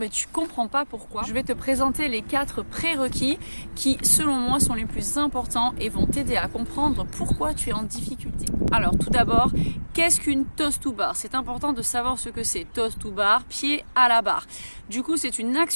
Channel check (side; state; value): both; inverted; correlation -1.00